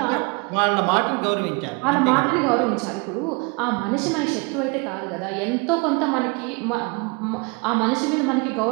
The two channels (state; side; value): quieter; left; 30.9 dB